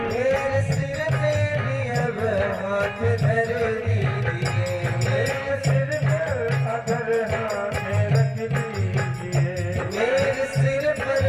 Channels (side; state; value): both; identical; correlation 1.00